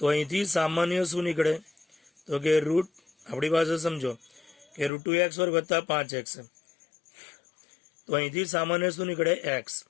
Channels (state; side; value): drops out; right; at 4.9 s